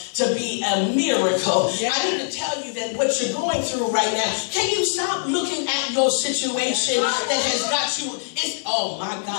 to be a miracle. I need to tell you that what you're going through right now, can you stop looking at your situation that has got you, oh my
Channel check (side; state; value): right; silent; 64 dB below the other